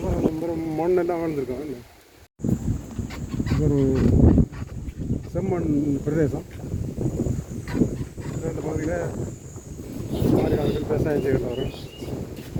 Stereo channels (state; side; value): identical; both; correlation 1.00